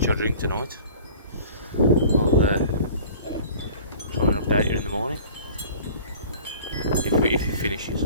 I drink tonight, I'll try and update you in the morning. If it finishes.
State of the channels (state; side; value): inverted; both; correlation -0.45